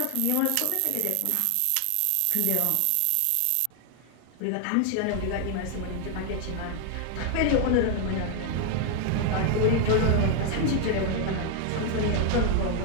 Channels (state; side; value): different; both; correlation 0.00